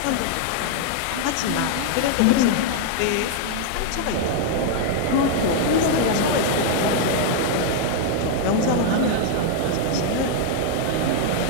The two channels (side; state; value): both; different; correlation 0.00